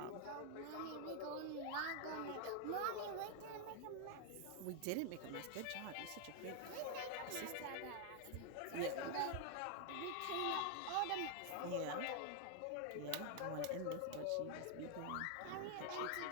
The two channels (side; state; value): both; different; correlation 0.00